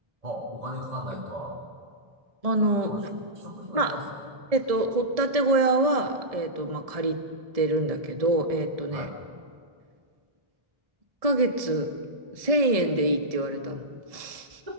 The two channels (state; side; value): late; left; 1.7 ms